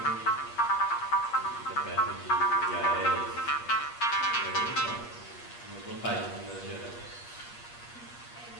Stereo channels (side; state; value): right; late; 8.4 ms